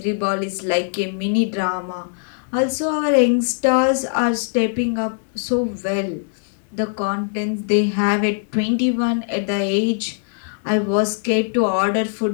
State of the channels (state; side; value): silent; right; 65 dB below the other